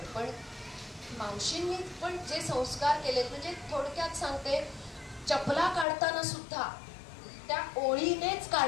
पण मावशींनी पण जे संस्कार केलेत, म्हणजे थोडक्यात सांगते, चपला काढताना सुद्धा त्या ओळीनेच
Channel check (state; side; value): drops out; right; at 5.9 s